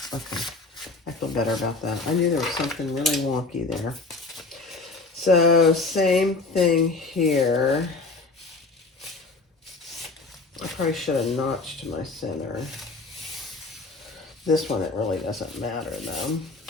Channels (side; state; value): right; quieter; 3.7 dB